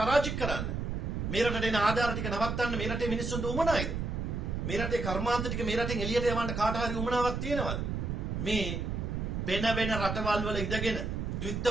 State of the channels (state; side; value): noise; right; rumble, 2 dB below the sound